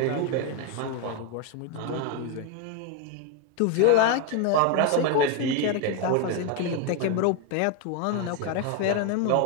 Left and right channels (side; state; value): both; different; correlation 0.01